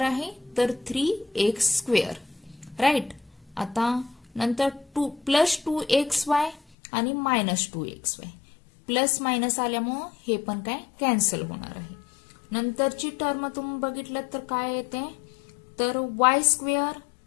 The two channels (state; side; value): drops out; right; at 6.6 s